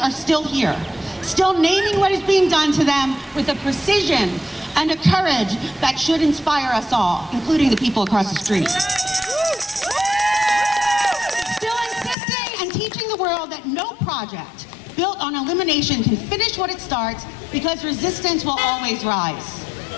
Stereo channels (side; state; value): right; drops out; at 12.2 s